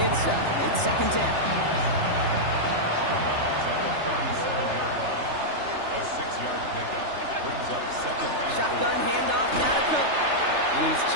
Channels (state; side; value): late; left; 3.3 ms